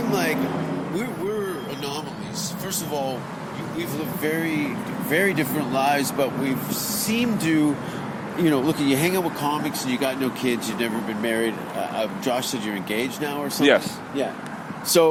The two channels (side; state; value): both; identical; correlation 1.00